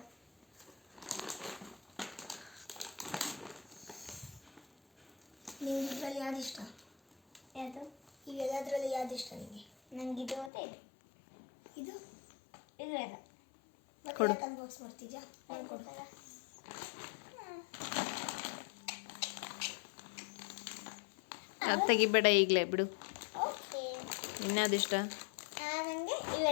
ನಿಮ್ಗೆ ಇದರಲ್ಲಿ ಯಾವ್ದು ಇಷ್ಟ? ಯಾವುದು? ಇವೆಲ್ಲದರಲ್ಲಿ ಯಾವ್ದು ಇಷ್ಟ ನಿಮಗೆ? ನಂಗೆ ಇದು ಮತ್ತೆ ಇದು. ಇದು ಇದು ಎಲ್ಲ ಮತ್ತೆ ಅನ್ಬಾಕ್ಸ್ ಮಾಡ್ತಿದ್ಯಾ? ಕೊಡ್ತಾರ ಅದು ತೆಗಿಬೇಡ ಈಗಲೇ ಬಿಡು. ಓಕೆ. ಇನ್ಯಾವುದು ಇಷ್ಟ? ನನಗೆ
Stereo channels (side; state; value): right; drops out; at 10.5 s